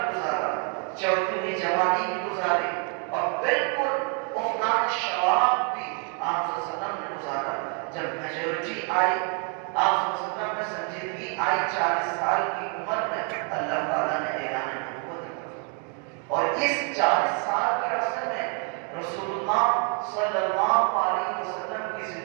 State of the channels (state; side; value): quieter; left; 39.9 dB